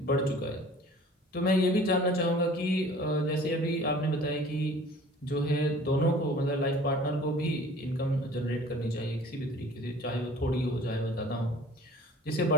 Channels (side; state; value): both; normal; correlation 0.48